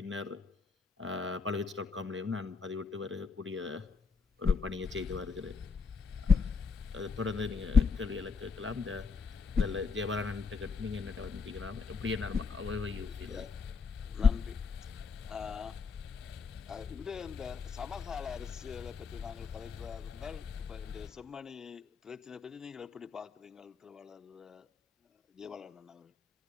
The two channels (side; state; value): right; quieter; 5.1 dB